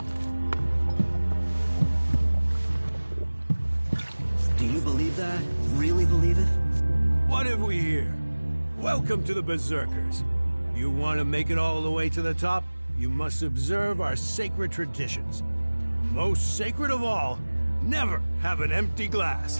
Do you believe that? Really believe it? What have we here? Welcome to the Berserkers. You want to make it all the way to the top? You must observe our sacred traditions. Most sacred of all, never have an empty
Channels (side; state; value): both; inverted; correlation -1.00